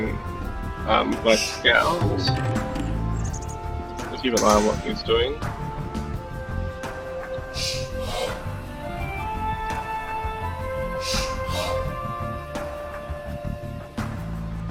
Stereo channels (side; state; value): both; identical; correlation 1.00